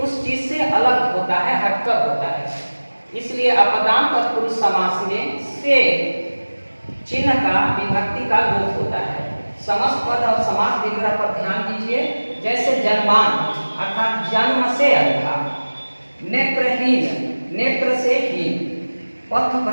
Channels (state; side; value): inverted; both; correlation -1.00